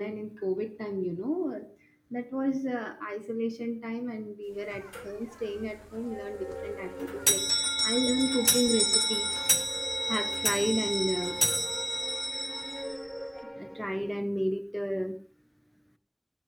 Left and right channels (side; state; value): both; identical; correlation 1.00